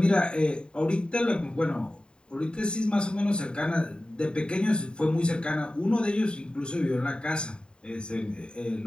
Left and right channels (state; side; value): late; right; 0.050 ms